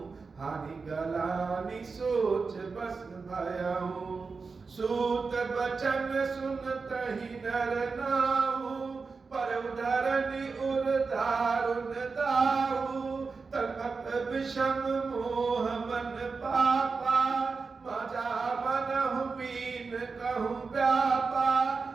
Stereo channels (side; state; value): left; quieter; 4.6 dB